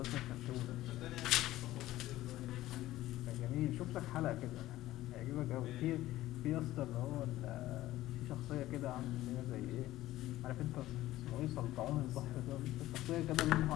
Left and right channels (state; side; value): quieter; right; 15.6 dB